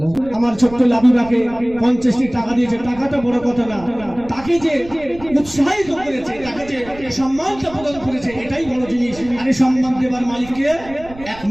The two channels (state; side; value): noise; right; rumble, 18 dB below the sound